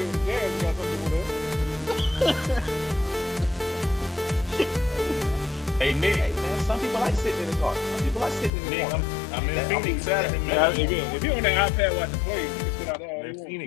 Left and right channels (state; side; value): drops out; right; at 8.5 s